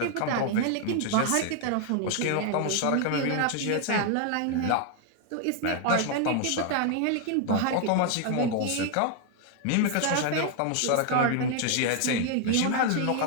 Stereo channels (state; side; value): different; both; correlation 0.00